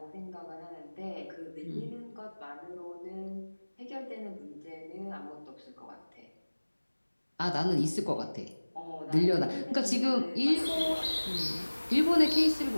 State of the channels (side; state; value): both; inverted; correlation -1.00